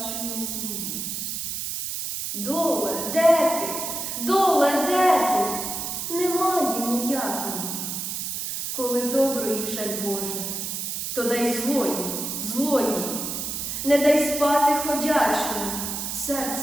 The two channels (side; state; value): right; noise; hiss, 4 dB below the sound